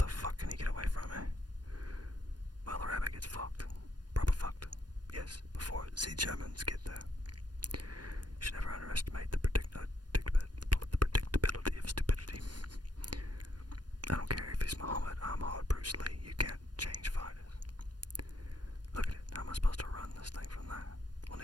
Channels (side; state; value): left; late; 0.69 ms